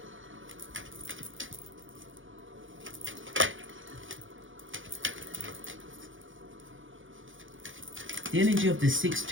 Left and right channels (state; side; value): late; left; 0.57 ms